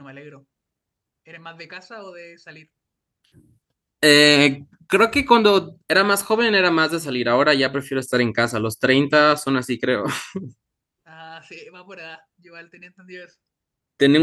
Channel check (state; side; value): identical; both; correlation 1.00